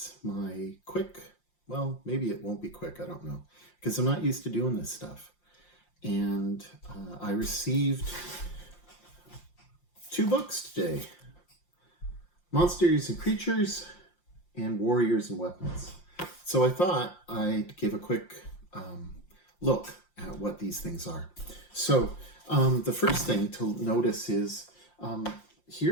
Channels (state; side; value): late; right; 5.7 ms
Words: my quick, well, maybe it won't be quick, I don't know, because I'm not used to doing this stuff. And I received 2 books today, Monsters and Creatures and Warriors and Weapons. So I thought I'd give a quick look at what these things are. So the first thing to notice is